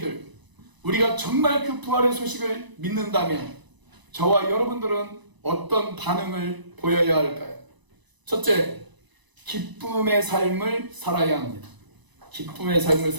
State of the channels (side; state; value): left; late; 1.0 ms